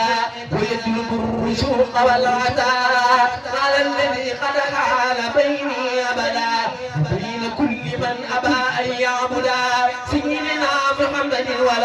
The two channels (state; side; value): identical; both; correlation 1.00